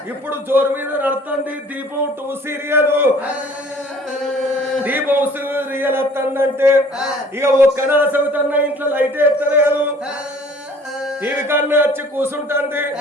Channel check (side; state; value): both; normal; correlation 0.52